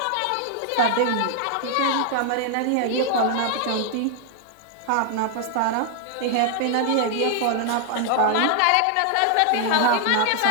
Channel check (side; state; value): both; different; correlation 0.00